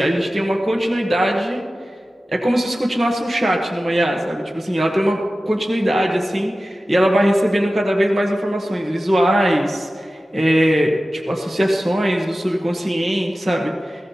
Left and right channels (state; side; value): normal; both; correlation 0.95